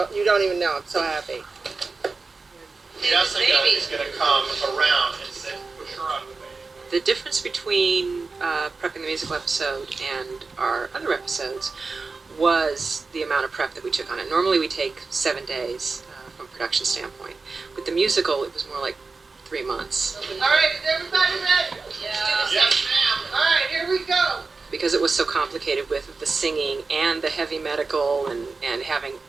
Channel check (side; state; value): left; quieter; 4.1 dB